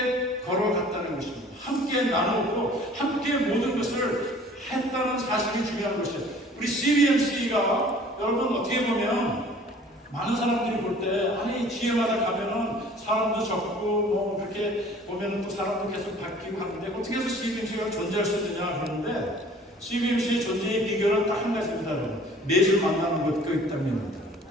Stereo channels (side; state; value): both; normal; correlation 0.51